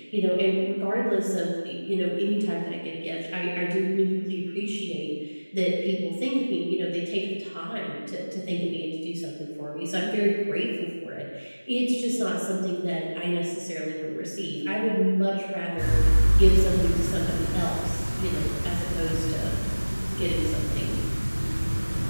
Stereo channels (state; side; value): inverted; both; correlation -1.00